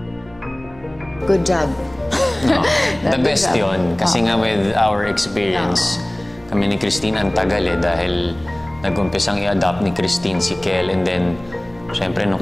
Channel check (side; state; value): right; noise; hum, 24 dB below the sound